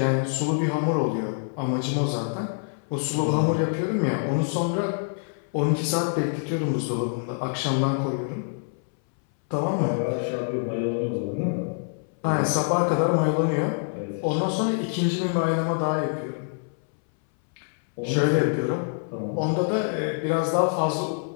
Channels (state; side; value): silent; right; 61 dB below the other